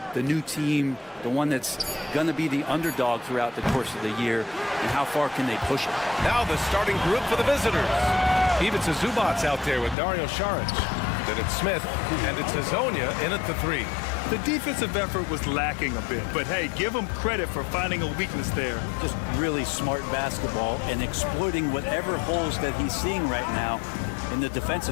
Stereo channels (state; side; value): drops out; right; at 10.0 s